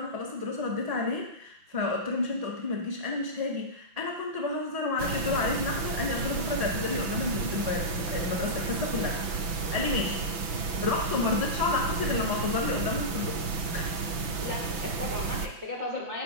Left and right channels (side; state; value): left; late; 6.1 ms